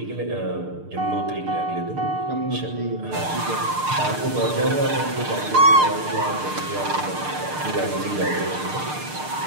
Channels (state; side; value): late; left; 6.6 ms